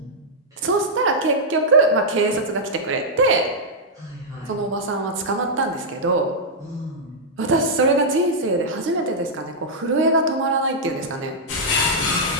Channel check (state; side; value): normal; both; correlation -0.07